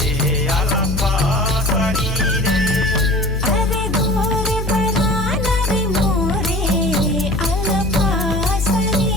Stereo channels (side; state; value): left; noise; hum, 2 dB below the sound